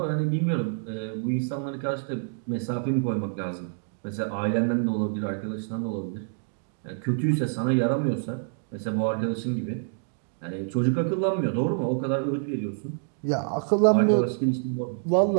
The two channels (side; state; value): left; silent; digital silence